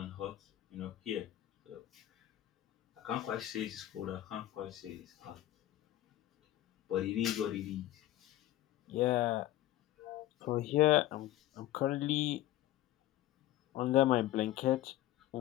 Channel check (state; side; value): quieter; right; 14.3 dB